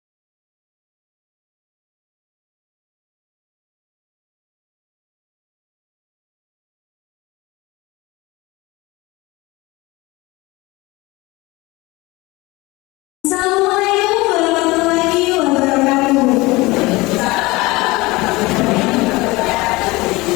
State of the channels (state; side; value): quieter; right; 22.0 dB